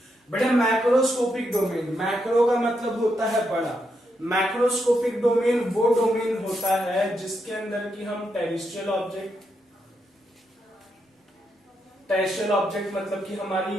बेटा मैक्रोस्कोपिक डोमेन, मैक्रो का मतलब होता है बड़ा। मैक्रोस्कोपिक डोमेन वो डोमेन होता है जिसके अंदर की हम टेरेस्ट्रियल ऑब्जेक्ट, टेरेस्ट्रियल ऑब्जेक्ट मतलब कि हमारी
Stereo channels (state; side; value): normal; both; correlation 0.82